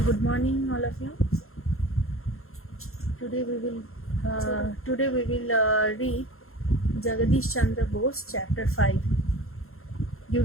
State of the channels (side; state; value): right; late; 0.62 ms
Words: Good morning, all of you. Today we will read Jagadish Chandra Bose, Chapter 5. You